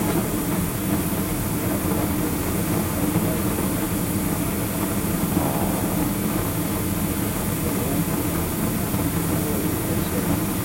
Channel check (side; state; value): both; identical; correlation 1.00